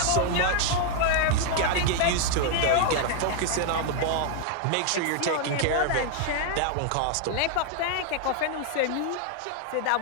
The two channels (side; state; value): both; different; correlation 0.00